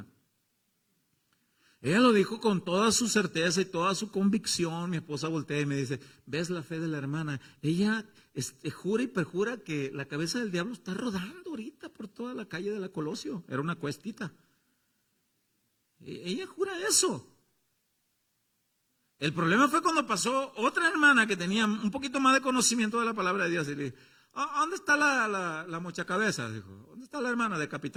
Ella lo dijo con toda su certeza y toda su convicción. Mi esposa voltea y me dice, ¿ves la fe de la hermana? Ella jura y perjura que la cabeza del diablo está rodando ahorita por toda la calle de la Colosio. Era una cuestita. Ella jura eso. El problema fue cuando pasó otra hermana que tenía un poquito más de conocimiento de la palabra de Dios y le dijo, ¿dónde está la mochacabeza? Dijo, ¿dónde está la hermana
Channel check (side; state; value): both; identical; correlation 1.00